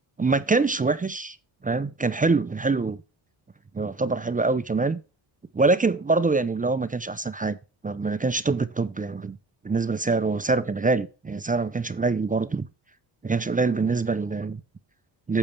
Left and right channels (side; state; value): left; quieter; 3.4 dB